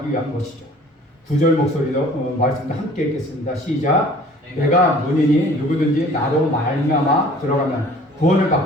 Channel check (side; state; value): both; normal; correlation 0.50